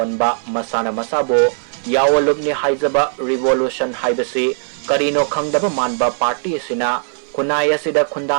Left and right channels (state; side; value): silent; left; 56 dB below the other